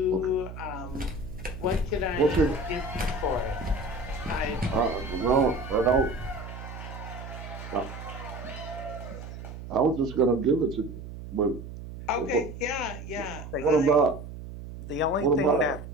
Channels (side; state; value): right; noise; hum, 11 dB below the sound